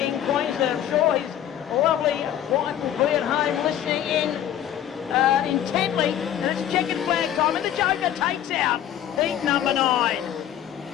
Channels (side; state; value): right; quieter; 10.8 dB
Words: in Queensland. I'm sure his lovely wife will be at home listening in intently. And it's checkered flag time, and the Joker takes out heat number 9.